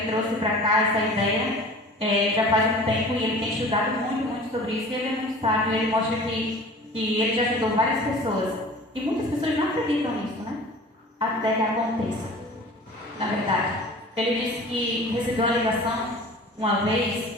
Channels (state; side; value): normal; both; correlation 0.42